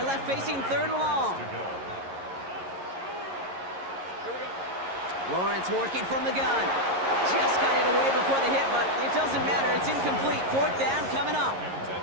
left facing 3rd and long. Lawrence working from the gun. Just got it away before the hit, but it doesn't matter. It's incomplete. 4th down coming up.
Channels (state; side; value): late; left; 11 ms